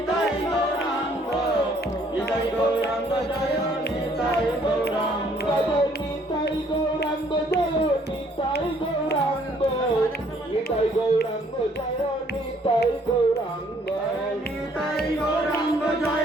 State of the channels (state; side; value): normal; both; correlation 0.63